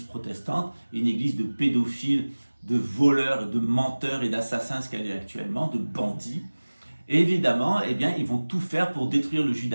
protestante, une église de pédophiles, de voleurs, de menteurs et d'assassins, ce qu'elle est actuellement, de bandits. Et évidemment, eh bien, ils vont tout faire pour détruire le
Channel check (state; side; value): inverted; both; correlation -1.00